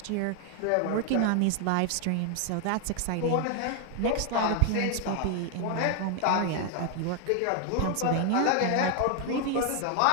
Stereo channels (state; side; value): different; both; correlation 0.00